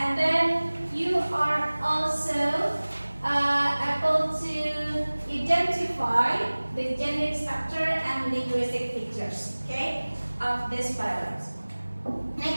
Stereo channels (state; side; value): inverted; both; correlation -1.00